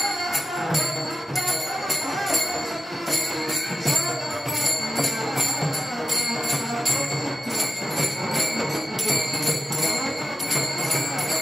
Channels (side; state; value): both; normal; correlation 0.92